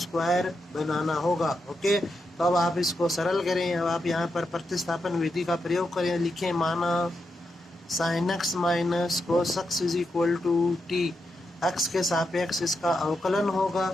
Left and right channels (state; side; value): normal; both; correlation 0.85